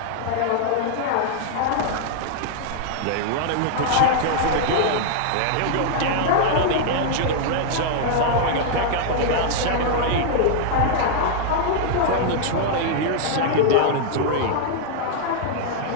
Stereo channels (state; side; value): different; both; correlation -0.01